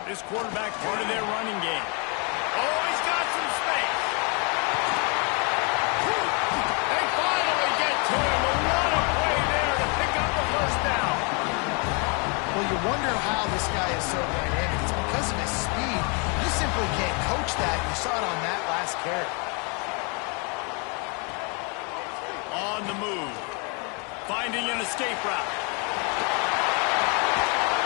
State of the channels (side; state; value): right; quieter; 34.1 dB